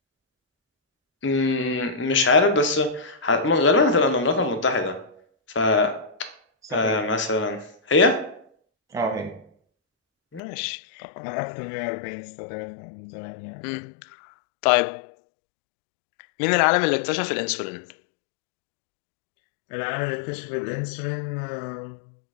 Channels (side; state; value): right; drops out; at 10.4 s